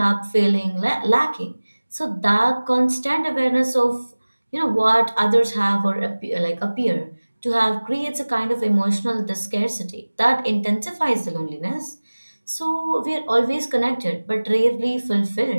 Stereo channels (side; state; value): both; inverted; correlation -1.00